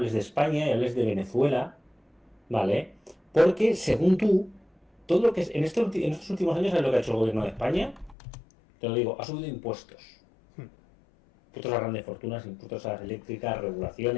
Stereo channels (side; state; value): right; drops out; at 8.2 s